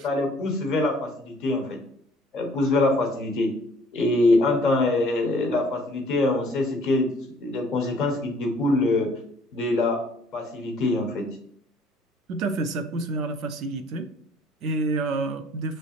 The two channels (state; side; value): normal; both; correlation 0.58